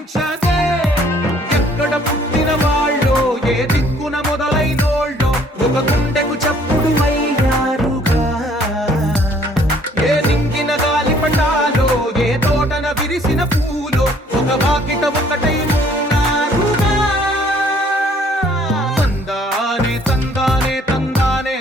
ఎక్కడ పుట్టిన వాళ్ళో ఏ దిక్కున మొదలైనోళ్ళో ఒక గుండెకు చప్పుడు అయ్యారుగా ఏ నింగిన గాలి పండాలో ఏ తోటన విరిసిన పూలో ఒక వాకిట ఒకటై ఉన్నారుగా తందానే తందానే తందానే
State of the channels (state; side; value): normal; both; correlation 0.60